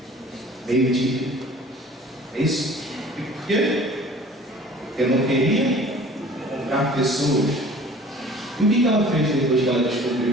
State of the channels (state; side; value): normal; both; correlation 0.47